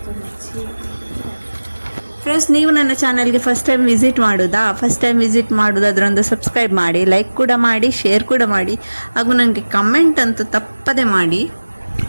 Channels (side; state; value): both; inverted; correlation -1.00